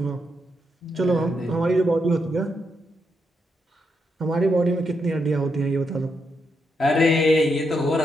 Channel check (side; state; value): both; normal; correlation 0.81